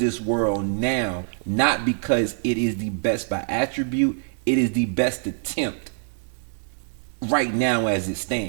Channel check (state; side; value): silent; left; digital silence